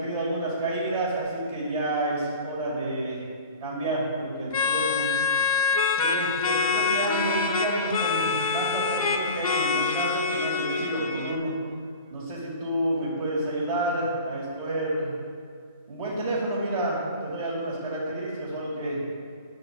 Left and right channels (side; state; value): both; inverted; correlation -0.37